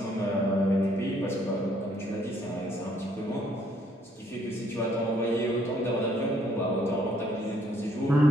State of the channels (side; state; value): both; normal; correlation 0.66